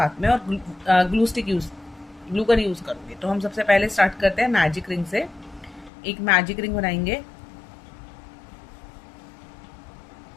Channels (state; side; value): drops out; right; at 5.9 s